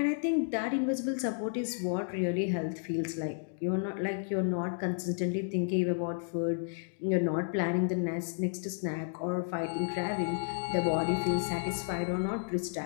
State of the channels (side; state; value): right; silent; digital silence